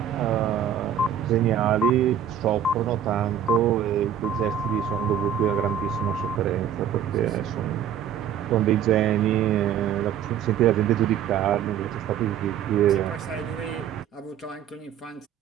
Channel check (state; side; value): quieter; left; 9.0 dB